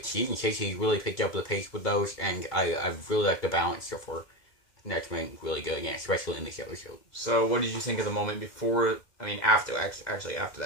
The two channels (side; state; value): right; late; 2.1 ms